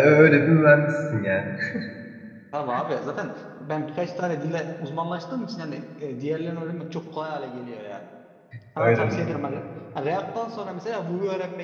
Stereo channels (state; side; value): identical; both; correlation 1.00